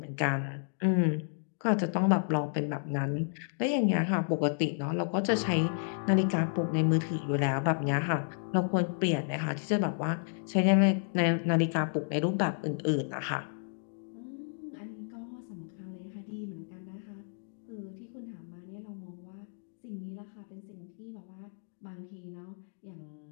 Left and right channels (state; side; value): silent; right; digital silence